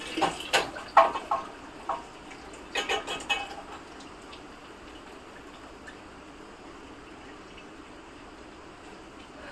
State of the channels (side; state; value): both; identical; correlation 1.00